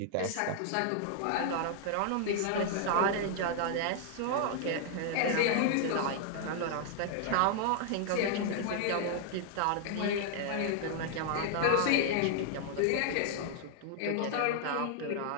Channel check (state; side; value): different; both; correlation 0.00